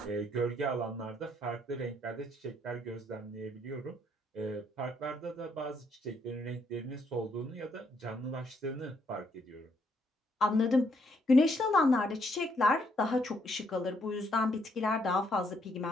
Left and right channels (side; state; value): both; normal; correlation 0.72